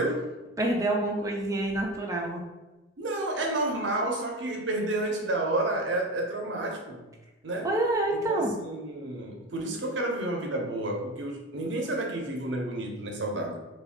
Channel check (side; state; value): both; normal; correlation 0.24